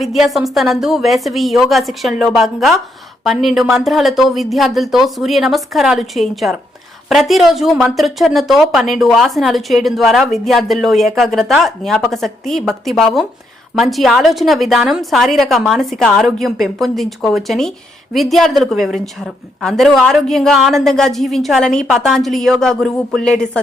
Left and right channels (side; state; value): both; normal; correlation 0.77